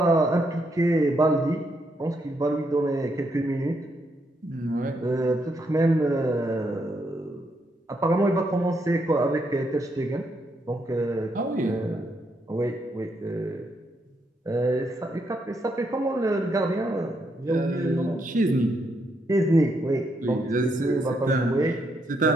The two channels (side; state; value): both; normal; correlation 0.77